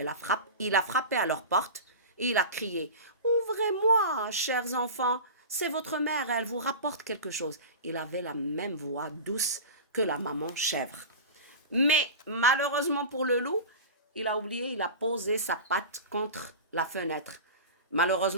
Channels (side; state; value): both; inverted; correlation -0.30